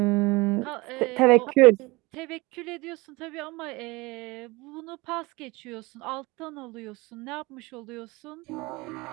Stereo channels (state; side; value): quieter; left; 23.3 dB